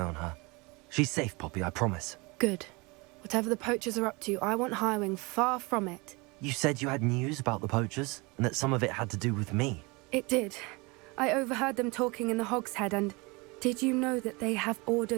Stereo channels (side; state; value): left; quieter; 26.5 dB